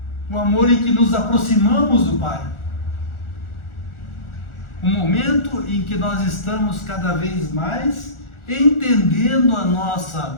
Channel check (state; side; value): late; right; 1.4 ms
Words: O amor em que nos aproximamos do Pai. O momento em que nós estamos cada vez mais entendendo a